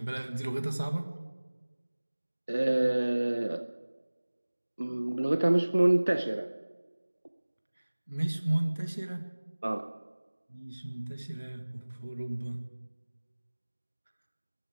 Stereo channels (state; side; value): inverted; both; correlation -1.00